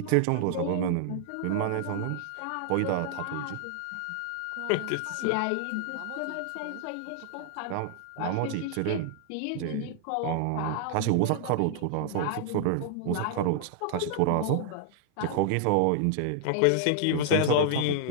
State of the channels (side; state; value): both; different; correlation -0.01